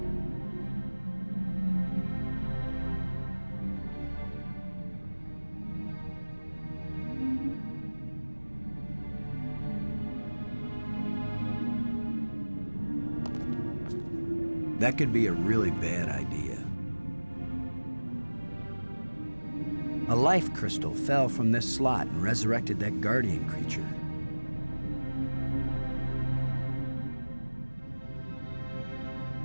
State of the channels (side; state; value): both; inverted; correlation -1.00